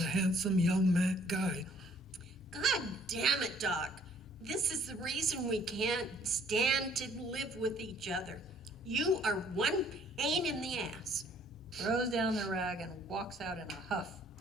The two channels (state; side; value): normal; both; correlation 0.60